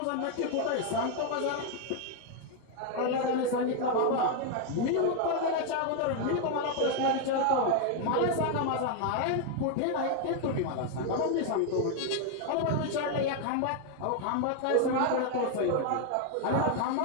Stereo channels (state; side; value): different; both; correlation 0.00